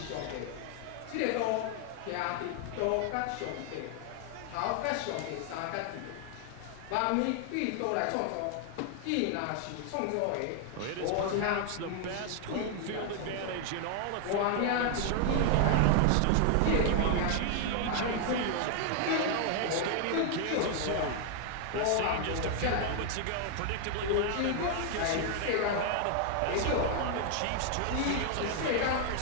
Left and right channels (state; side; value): different; both; correlation 0.00